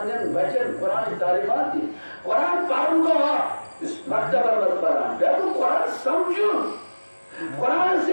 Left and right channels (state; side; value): inverted; both; correlation -1.00